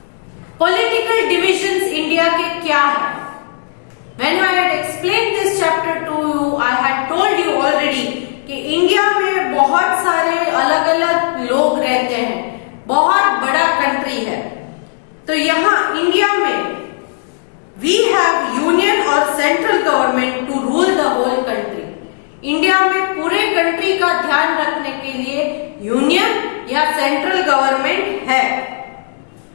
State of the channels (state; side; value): silent; right; digital silence